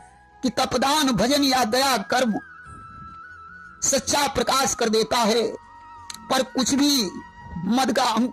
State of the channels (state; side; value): identical; both; correlation 1.00